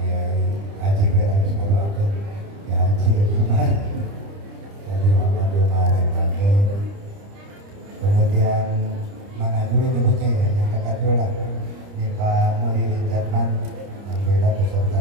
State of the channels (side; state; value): left; late; 30 ms